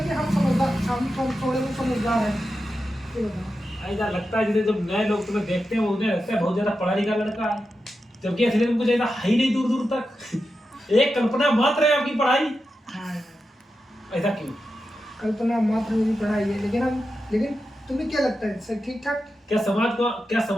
कि हम समझदार, हम थोड़े बहुत समझदार हैं? ये बताओ। ऐसा लगता है जैसे जब नए लोग तुम्हें देखते हैं उन्हें लगता है बहुत ज्यादा पढ़ा लिखा लड़का है, जबकि असली में कुछ ऐसा है ही नहीं दूर दूर तक। एक कल्पना मात्र है आपकी पढ़ाई। हाँ, ऐसा क्यों? कल्पना मात्र मेरी पढ़ाई है, लेकिन तुम्हें क्या लगता है सर ठीक ठाक? क्या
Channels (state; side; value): normal; both; correlation 0.90